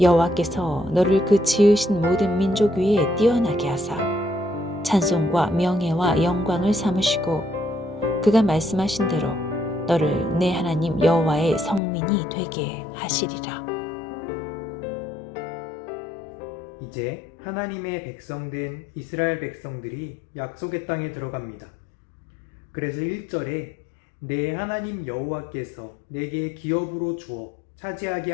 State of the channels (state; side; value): drops out; right; at 11.8 s